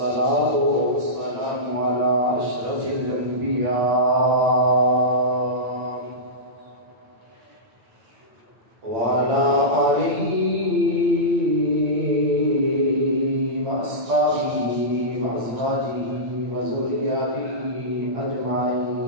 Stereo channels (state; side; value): late; left; 8.8 ms